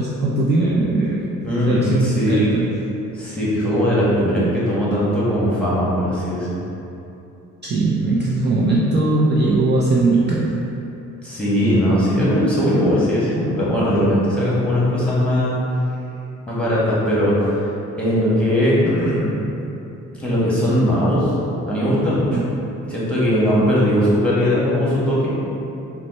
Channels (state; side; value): normal; both; correlation 0.57